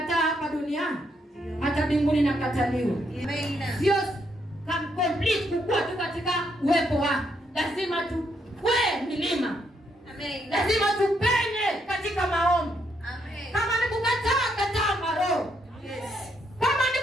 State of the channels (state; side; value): normal; both; correlation 0.76